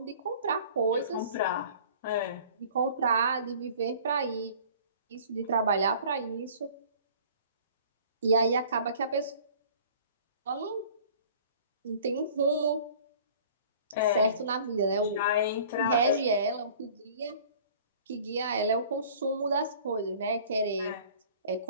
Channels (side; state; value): both; inverted; correlation -0.48